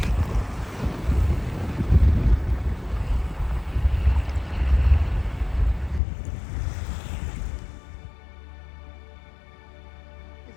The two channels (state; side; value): drops out; right; at 6.0 s